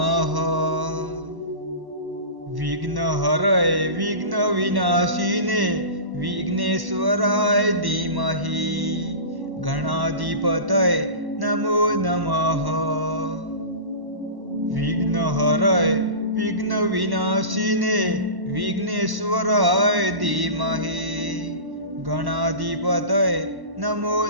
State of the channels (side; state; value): left; late; 1.1 ms